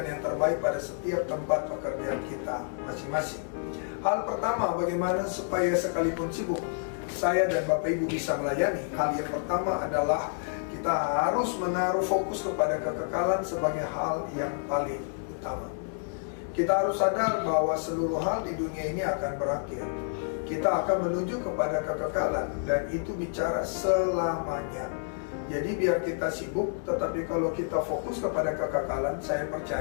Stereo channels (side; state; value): right; silent; digital silence